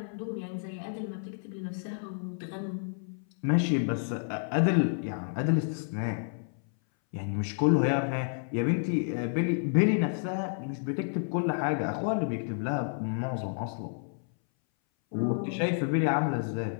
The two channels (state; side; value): silent; right; 58 dB below the other